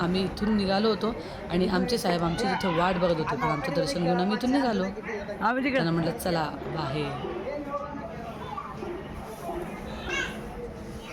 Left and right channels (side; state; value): both; identical; correlation 1.00